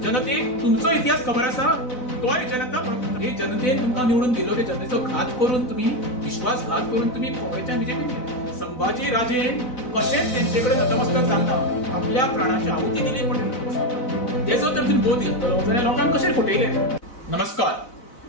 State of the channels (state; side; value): late; right; 4.0 ms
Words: जनतेक तुमचो इतिहास खबर आसा तोय जनता हे जनतेन तुमकां निवडून दिलो ते जनतेचो घात करून तुम्ही विश्वासघात करून तुम्ही काँग्रेसच्या बीजेपी संभाजी राजेन कशेंच तेंचेकडे नतमस्तक जालना आपल्या प्राणाची आहुती दिली पण तेचो तर तुम्ही बोध घेतलो जाल्यार लोकांक कशें फटयले। नमस्कार,